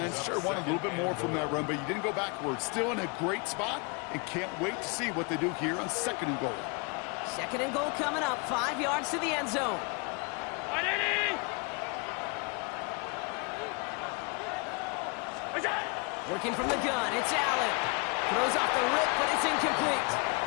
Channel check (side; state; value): right; quieter; 31.9 dB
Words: Sure wanted a little bit more from that run, but you didn't go backwards. Still in a great spot, and can't wait to see what they do here on 2nd and goal. 2nd and goal coming up, 5 yards to the end zone. Working from the gun, it's Allen. Throws off the rip, but it's incomplete.